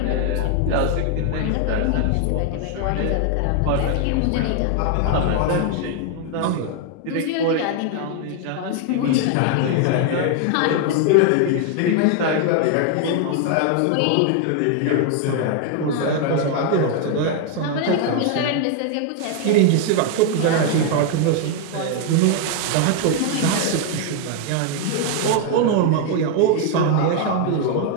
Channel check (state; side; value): different; both; correlation 0.00